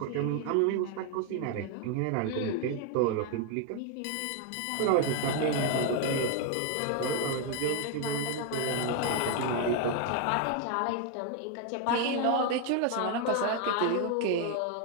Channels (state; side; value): different; both; correlation 0.01